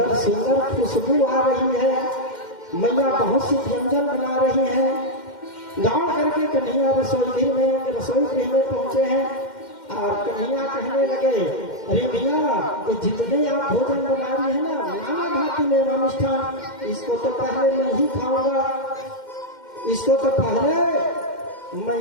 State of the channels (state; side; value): late; right; 2.1 ms